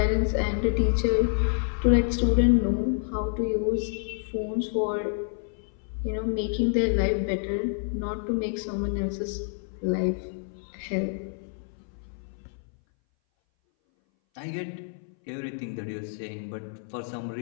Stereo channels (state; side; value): silent; right; 58 dB below the other